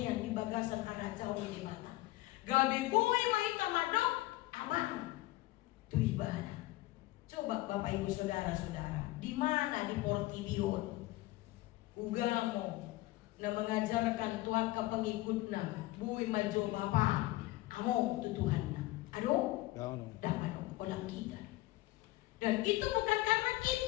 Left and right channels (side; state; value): right; quieter; 18.7 dB